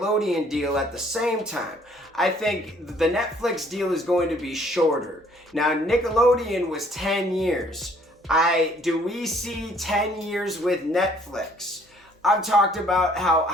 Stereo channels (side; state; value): both; normal; correlation 0.61